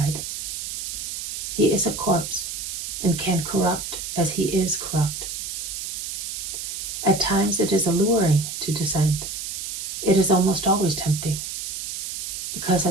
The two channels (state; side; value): noise; right; hiss, 5 dB below the sound